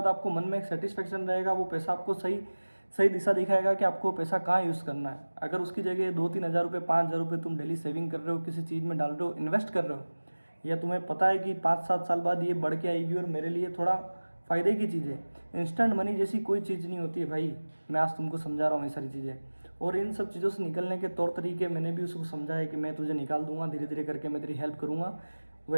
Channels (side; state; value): both; inverted; correlation -1.00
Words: आपको मन में एक सेटिस्फेक्शन रहेगा। वो पैसा आपको सही सही दिशा दिखाएगा कि आपको पैसा कहाँ यूज़ करना है। अगर उसकी जगह 2-3 हज़ार रुपये, 5 हज़ार रुपये तुम डेली सेविंग कर रहे हो, किसी चीज़ में डाल रहे हो, इन्वेस्ट कर रहे हो, या तुम्हें पता है कि 5-7 साल बाद ये बढ़ के आएगी और मेरे लिए थोड़ा फ़ायदे की चीज़ है। इंस्टेंट मनी जैसी कोई चीज़ नहीं होती है भाई, मैं आज तुमको समझा रहा हूँ ये सारी चीज़ें। और इन सब चीज़ों से निकलने के तौर तरीके मैंने भी उसको समझाया कि मैं तुझे निकाल दूंगा, धीरे धीरे करके मैं तेरी हेल्प करूँगा।